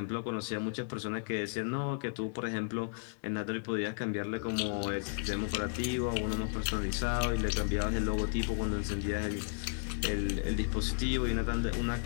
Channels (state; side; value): silent; right; digital silence